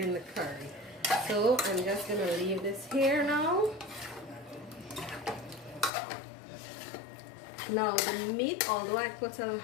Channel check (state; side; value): drops out; right; at 5.9 s